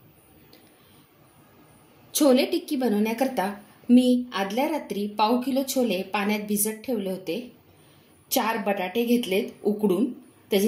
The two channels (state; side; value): identical; both; correlation 1.00